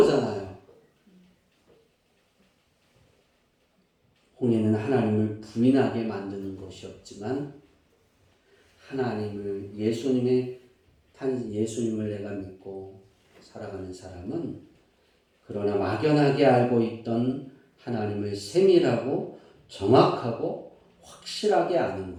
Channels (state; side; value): identical; both; correlation 1.00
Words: 홍해는 하나님을 부인하게 만드는 것이었지만 하나님을 예수님을 내가 믿고 살아가는 사람은 그러나 막연하게 알고 있던 하나님을 세밀하고 정확하고 확실하게 아는